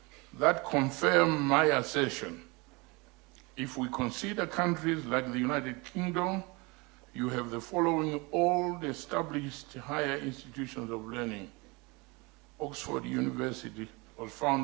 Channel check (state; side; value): quieter; left; 26.7 dB